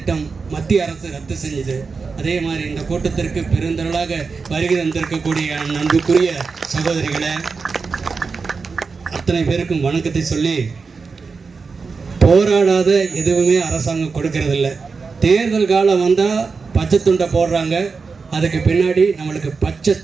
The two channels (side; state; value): left; quieter; 4.8 dB